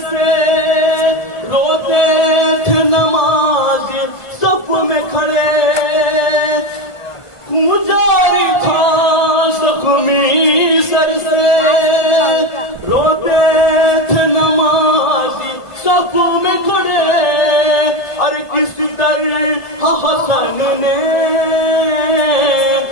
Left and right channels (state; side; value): late; right; 1.5 ms